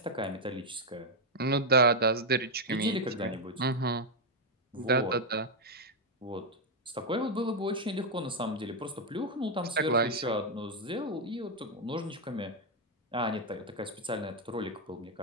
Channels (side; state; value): both; normal; correlation 0.01